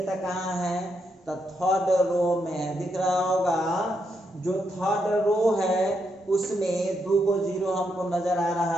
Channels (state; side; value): normal; both; correlation 0.80